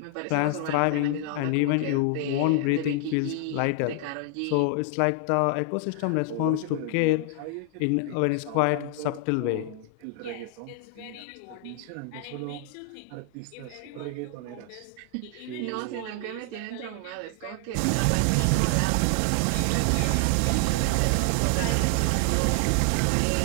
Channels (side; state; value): both; different; correlation 0.00